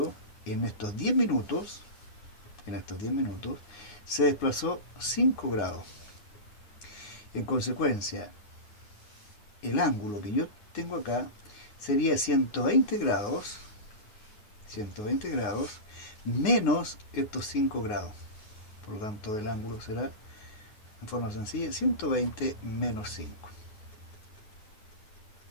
en estos 10 minutos, se desplazó 5 grados. En consecuencia, el ángulo que yo tengo acá sería 120 grados menos estos 5 grados. Por lo tanto, el ángulo será, en forma sencilla, 120 menos 5.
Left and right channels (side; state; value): right; late; 9.5 ms